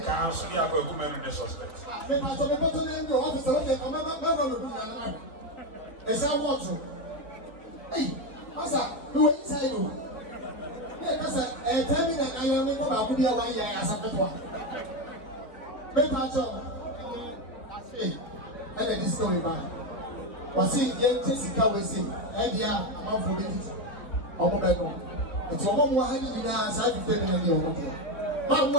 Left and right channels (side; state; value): right; late; 4.0 ms